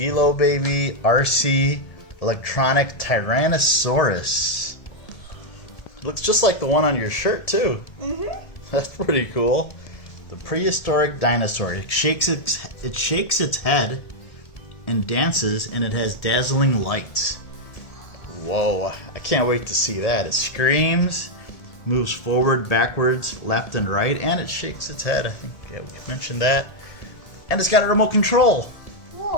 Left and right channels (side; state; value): right; late; 1.7 ms